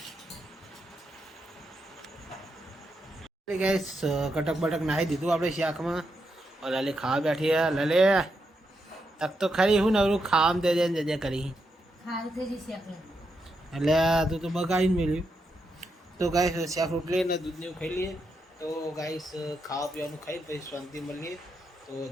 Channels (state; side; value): normal; both; correlation 0.83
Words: ગાઈસ કટક બટક નાખી દીધું આપણે શાકમાં લલી ખાવા બેઠી હે લલે તક તો ખરી હું નવરું ખાવામાં દે દે જજે કરી એટલે તું તો બગાડીને મેળ્યું. તો ગાઈસ શાક રોટલી ને દૂધ ને એવું ખાઈ લઈએ તો ગાઈસ ખાવા પીવાનું ખાઈ પછી શાંતિ મળીએ. તો